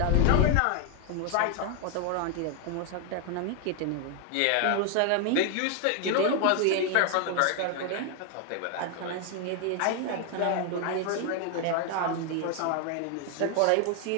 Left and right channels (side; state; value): both; different; correlation 0.00